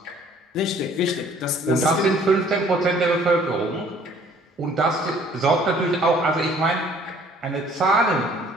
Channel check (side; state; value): both; normal; correlation 0.57